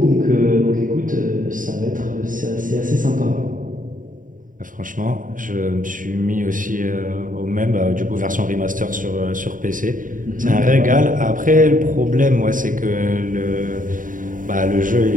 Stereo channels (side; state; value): left; late; 0.39 ms